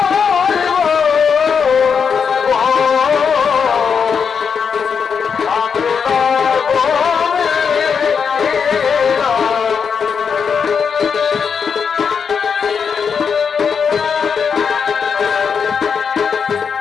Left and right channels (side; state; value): right; quieter; 6.4 dB